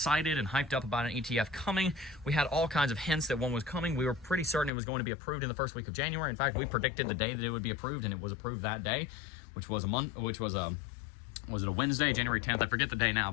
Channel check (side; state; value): right; drops out; at 4.7 s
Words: and hyped up about an ETF coming. We had all kinds of hints that one was coming. We were pretty certain it was going to be approved in the first week of January. In fact, we predicted the day that it would be approved, and it was approved that day, which was was it a Wednesday, January 10th? I forget the day now,